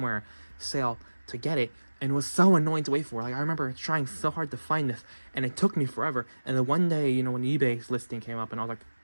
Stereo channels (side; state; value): both; inverted; correlation -1.00